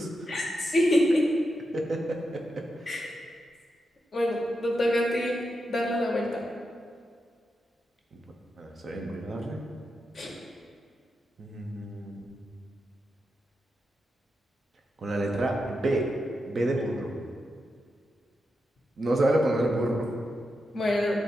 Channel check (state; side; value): normal; both; correlation 0.87